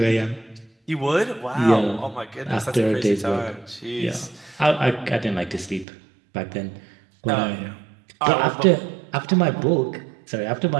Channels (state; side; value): drops out; left; at 5.9 s